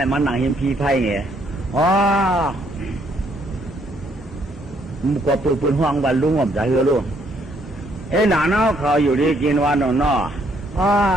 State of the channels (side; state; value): both; normal; correlation 0.69